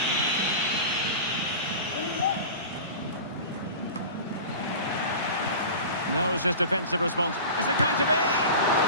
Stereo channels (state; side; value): inverted; both; correlation -0.34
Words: Knows his defensive response. Is it going to be?